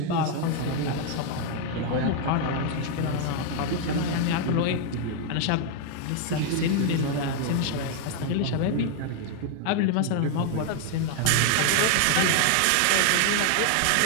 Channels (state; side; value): different; both; correlation 0.00